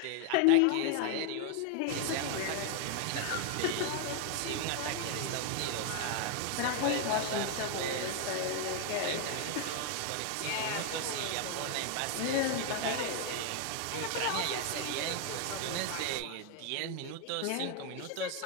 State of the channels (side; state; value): both; different; correlation 0.00